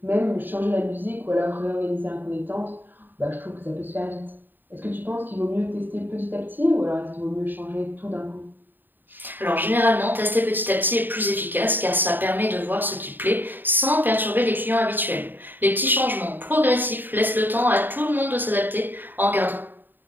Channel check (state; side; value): late; left; 0.092 ms